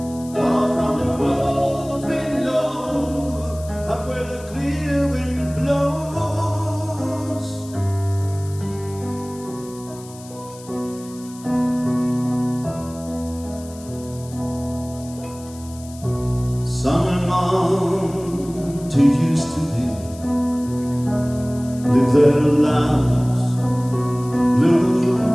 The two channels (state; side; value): noise; left; hiss, 20 dB below the sound